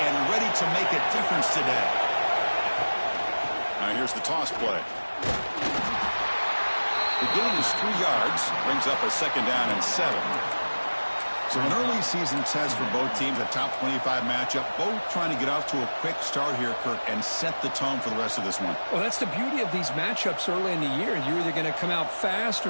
and ready to make a difference today. Now here's the toss play. The gain is 3 yards, brings up a 2nd down and 7. So an early season test for both teams, a top 25 matchup, both trying to get off to a quick start here, Kirk, and set the tone for the rest of this one. Well, that's the beauty of these matchups early in the year. You're either going to come out fast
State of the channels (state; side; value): inverted; both; correlation -1.00